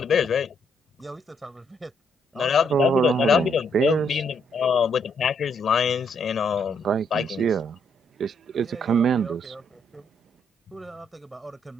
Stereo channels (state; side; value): normal; both; correlation 0.73